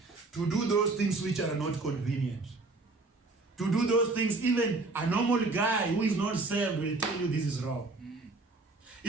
to do those things which are not convenient. To do those things, even a normal guy who is not saved will tell you this is wrong.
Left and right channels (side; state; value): left; quieter; 3.3 dB